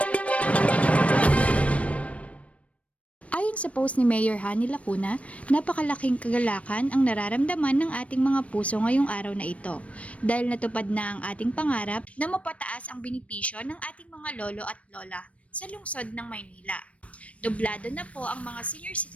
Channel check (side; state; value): right; late; 0.064 ms